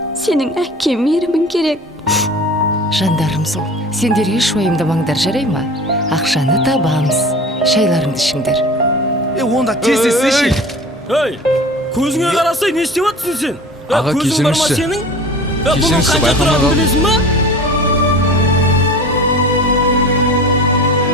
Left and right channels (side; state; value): both; normal; correlation 0.38